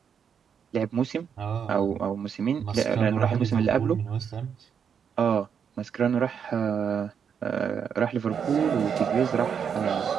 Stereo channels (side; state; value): left; quieter; 7.3 dB